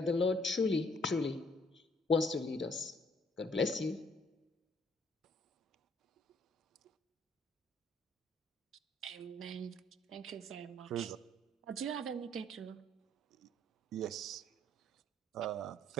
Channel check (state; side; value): normal; both; correlation 0.64